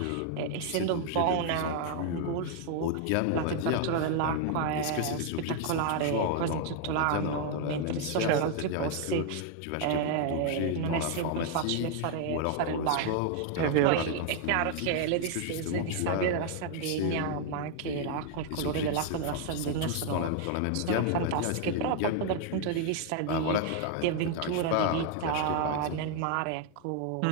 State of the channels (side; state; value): both; different; correlation 0.00